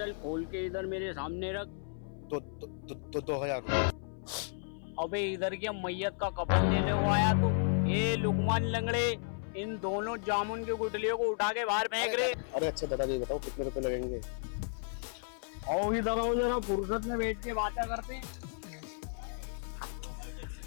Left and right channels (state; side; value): silent; right; 55 dB below the other